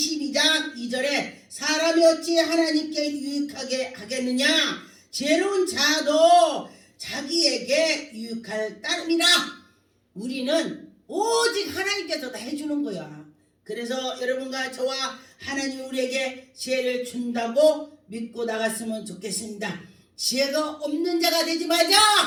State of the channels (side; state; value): both; identical; correlation 1.00